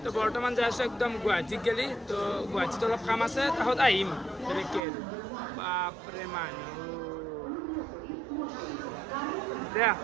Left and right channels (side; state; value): left; drops out; at 4.8 s